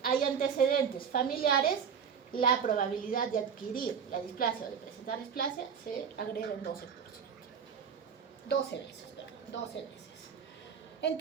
hay antecedentes familiares, la probabilidad de adquirir la displasia o de presentar displasia se agrega en 12%. 12 veces, perdón, 12 veces.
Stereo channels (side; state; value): left; quieter; 7.1 dB